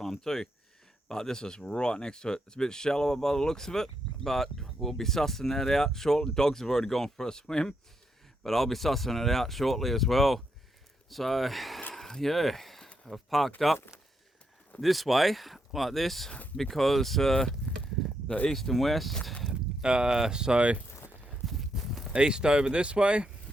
too, but this is right next to it. It's a bit shallower by the looks of it, but we'll be sussing that out shortly. Dogs have already gone for a swim, but I'll be sussing it out shortly as well. So yeah, I've parked up this way like this because the east and west, so east over this way,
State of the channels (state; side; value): normal; both; correlation 0.80